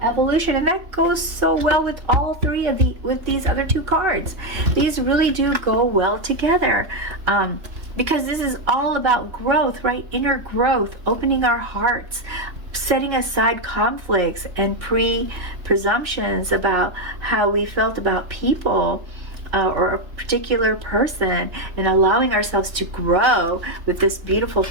evolution, and that goes so well with all three of these other two cards. These really do go well together, because this is all about growth, right? Inner growth, opening our hearts, setting aside conflicts and presumptions about how we felt about people or a particular person, and allowing ourselves to grow with this beautiful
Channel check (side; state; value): left; late; 3.3 ms